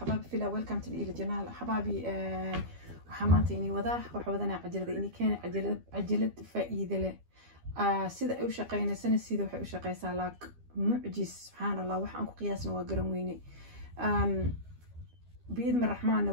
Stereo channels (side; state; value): left; late; 12 ms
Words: في ويلكم تو إلى جنال حبايبي. وحمانتي إني وضاح وحوضنا عجلة إني كان عجلة فائدة له. سيدا أو شقينا سنة سيدا وحي شقي سالاك معجز سبحان الله وحن قياسنا وقرنويني. بإذن الرحمن